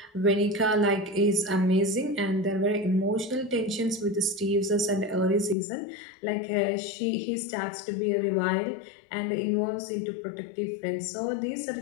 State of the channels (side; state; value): right; drops out; at 5.6 s